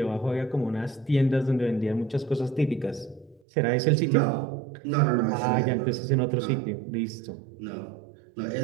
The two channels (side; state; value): left; drops out; at 3.4 s